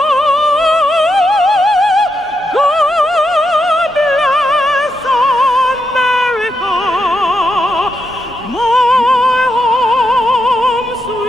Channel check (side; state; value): both; normal; correlation 0.83